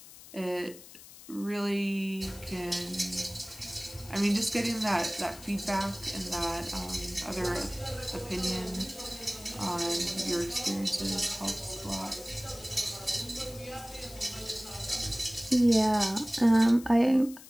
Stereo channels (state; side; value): noise; left; hiss, 18 dB below the sound